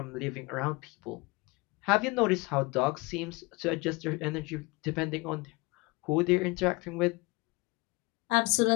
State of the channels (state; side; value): quieter; right; 25.2 dB